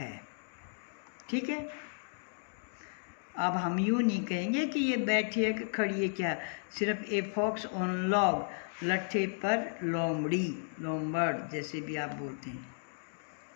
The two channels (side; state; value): right; silent; digital silence